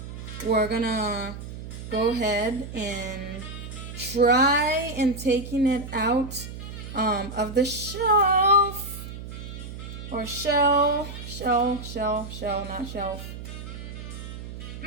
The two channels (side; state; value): right; noise; hum, 10 dB below the sound